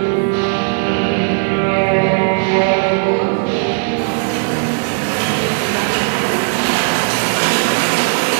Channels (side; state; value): left; silent; 61 dB below the other